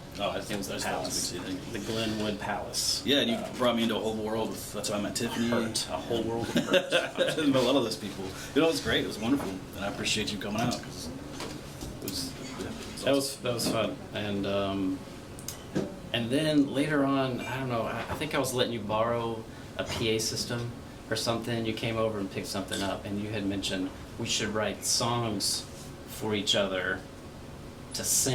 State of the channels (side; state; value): both; identical; correlation 1.00